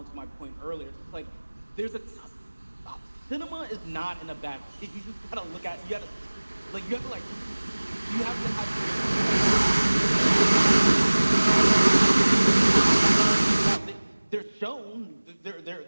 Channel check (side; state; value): both; inverted; correlation -1.00